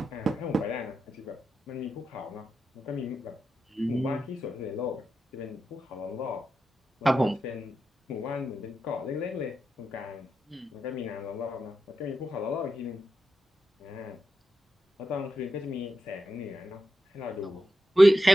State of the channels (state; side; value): normal; both; correlation 0.88